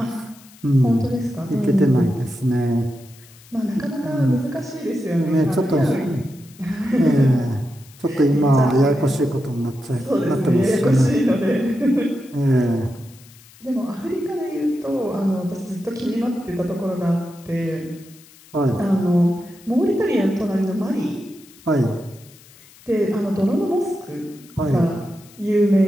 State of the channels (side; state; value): left; noise; hiss, 24 dB below the sound